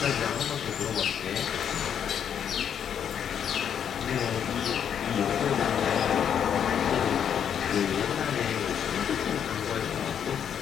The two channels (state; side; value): quieter; right; 8.5 dB